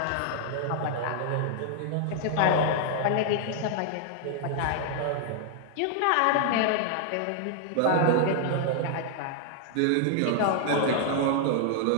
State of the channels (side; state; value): both; different; correlation -0.01